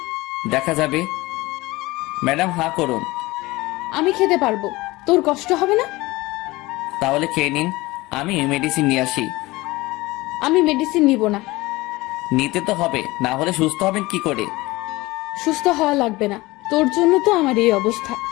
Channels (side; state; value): right; quieter; 20.6 dB